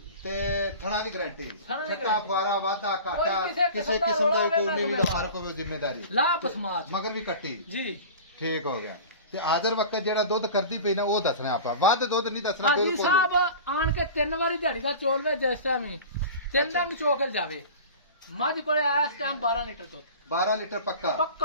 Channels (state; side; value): inverted; both; correlation -0.36